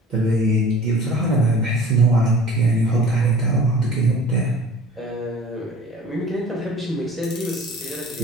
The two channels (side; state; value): both; normal; correlation 0.45